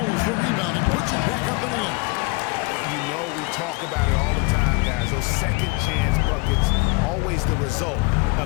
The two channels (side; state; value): right; quieter; 26.7 dB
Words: the rebound and puts it back up and in. You know we talk about it all the time, guys. Those second chance buckets, always the result